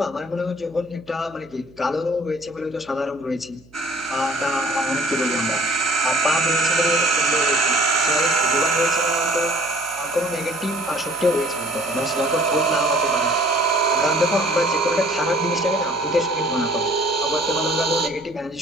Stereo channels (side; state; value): right; noise; hum, 27 dB below the sound